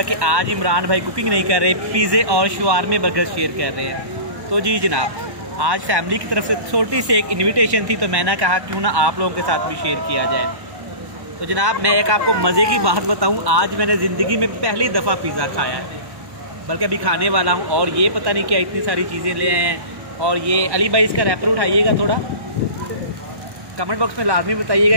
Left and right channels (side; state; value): left; late; 1.1 ms